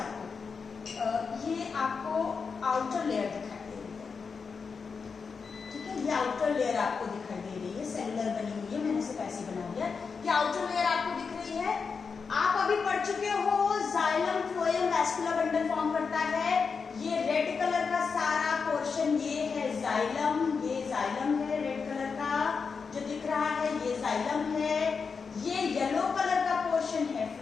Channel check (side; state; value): right; quieter; 5.4 dB